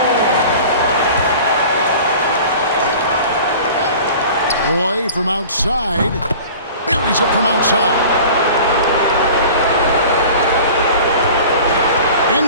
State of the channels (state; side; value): inverted; both; correlation -0.41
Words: Roy from outside. Buries it from outside.